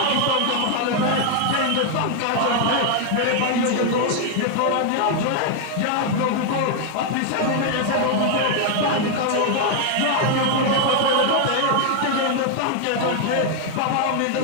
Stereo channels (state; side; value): different; both; correlation 0.00